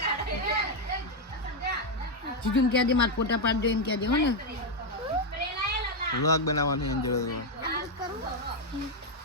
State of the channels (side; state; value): both; normal; correlation 0.03